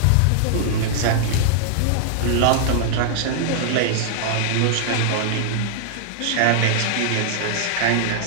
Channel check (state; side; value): different; both; correlation -0.01